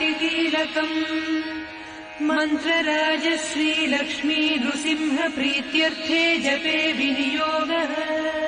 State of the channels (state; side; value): identical; both; correlation 1.00